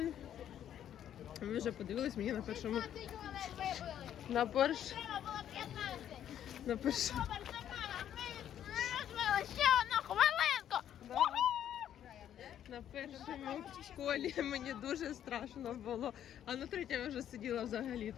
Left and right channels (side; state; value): right; quieter; 10.4 dB